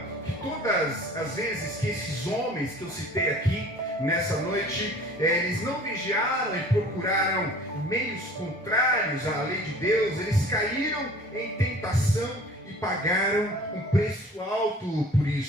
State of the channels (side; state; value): both; normal; correlation 0.47